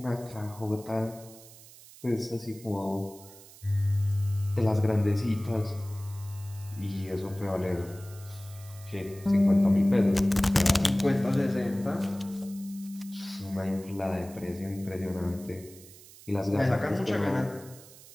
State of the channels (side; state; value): right; noise; hiss, 20 dB below the sound